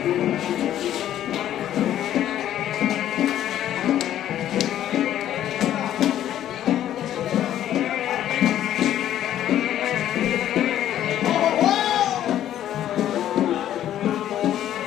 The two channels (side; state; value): right; quieter; 11.7 dB